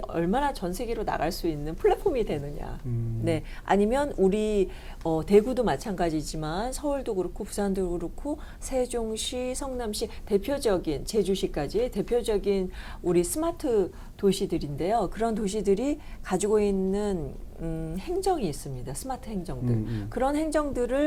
얼마나 전 세계로 나갈 수 있는 플랫폼이 되느냐. 네, 아니면 우리 대구도 마찬가지지만 서울도 그렇고 부산도 그렇고 세종시, 성남시, 대표적인 제주시까지 대표적인 우리 스마트 도시들인데요. 그런 도시들이 가지고 있는 행정이 있습니다. 스마트 행정들. 그런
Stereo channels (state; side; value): identical; both; correlation 1.00